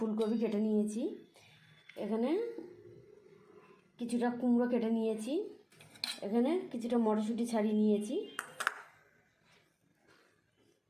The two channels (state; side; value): identical; both; correlation 1.00